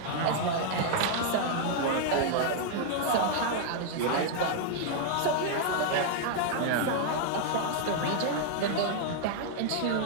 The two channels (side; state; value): both; different; correlation 0.00